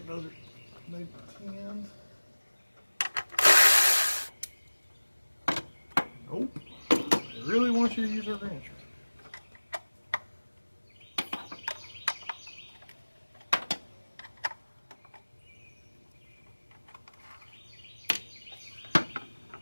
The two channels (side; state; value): both; inverted; correlation -1.00